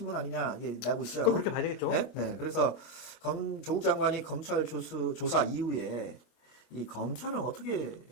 아니냐, 이게 나고 있어요. 그렇게 봐야 되겠죠. 그래서 조국 장관이 검찰 조사 이후에 이 검찰은 어떻게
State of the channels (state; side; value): late; right; 25 ms